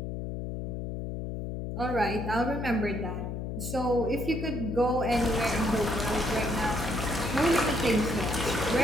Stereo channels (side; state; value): left; noise; hum, 5 dB below the sound